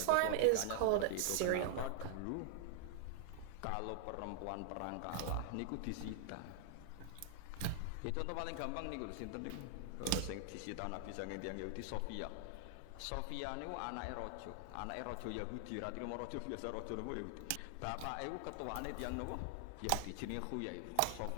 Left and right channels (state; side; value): different; both; correlation -0.01